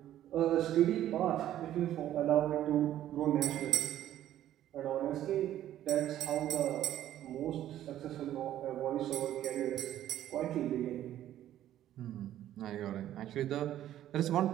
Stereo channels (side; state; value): left; quieter; 12.3 dB